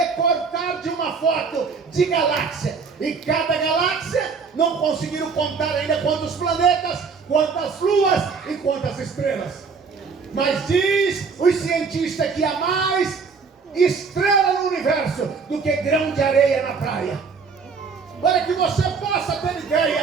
de uma foto de galáxia. E cada galáxia não conseguiram contar ainda quantos planetas, quantas luas e quantas estrelas. Mas diz os cientistas que há mais estrela no universo do que grão de areia na praia. Para que você possa ter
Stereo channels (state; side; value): quieter; left; 5.2 dB